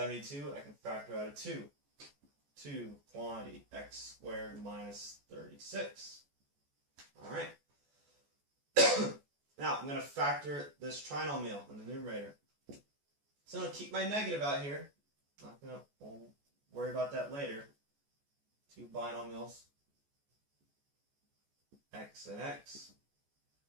I can factor out a 2. 2 quantity x squared minus 36. Alright. Now I'm going to factor this trinomial in the numerator. So I'm going to keep my negative out here. We'll worry about that later. 2 binomials, x and x.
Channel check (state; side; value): late; left; 14 ms